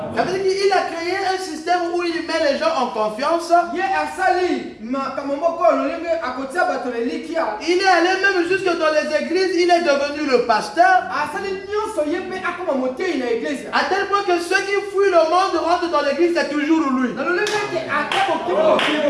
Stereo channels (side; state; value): both; identical; correlation 1.00